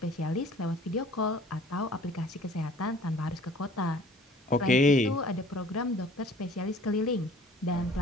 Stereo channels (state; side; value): normal; both; correlation 0.51